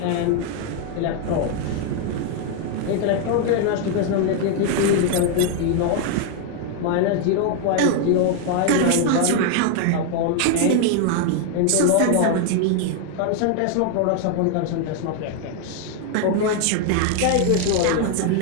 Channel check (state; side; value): different; both; correlation 0.01